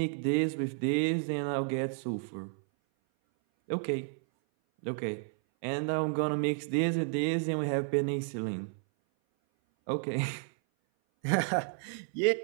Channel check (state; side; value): silent; left; 57 dB below the other